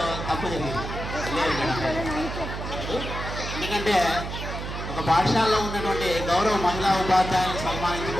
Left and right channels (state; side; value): noise; right; hum, 6 dB below the sound